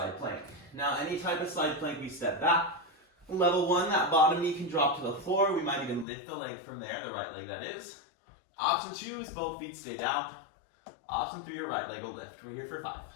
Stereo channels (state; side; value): drops out; right; at 6.1 s